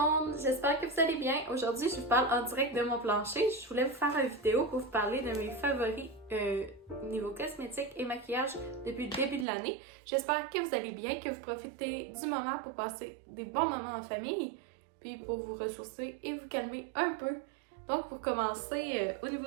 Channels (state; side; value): drops out; left; at 9.5 s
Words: j'espère que vous allez bien. Aujourd'hui, je vous parle en direct de mon plancher. Je voulais vous faire une vidéo pour vous parler de mes favoris niveau cosmétique et maquillage depuis le début de l'année. J'espère que vous allez bien, que vous profitez du moment pour passer des bons moments en famille, puis pour vous ressourcer et vous calmer un peu. Donc pour commencer, au